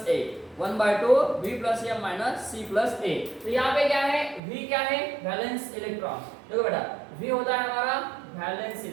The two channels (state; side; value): drops out; left; at 4.4 s